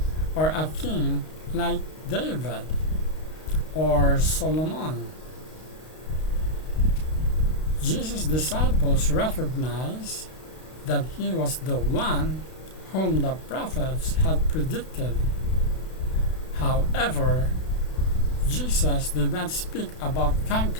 or a king like David or Solomon. Jesus' disciples recognized that he was the one whom the prophets had predicted. However, Jesus did not speak about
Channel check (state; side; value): late; right; 32 ms